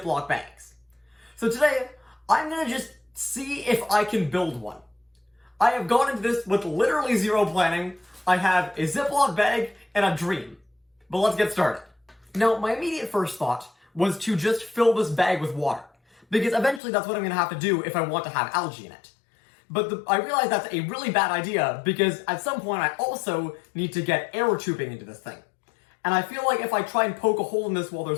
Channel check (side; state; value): right; drops out; at 16.8 s